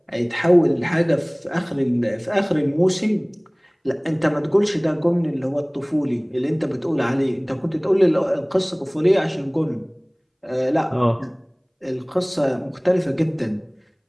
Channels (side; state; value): both; identical; correlation 1.00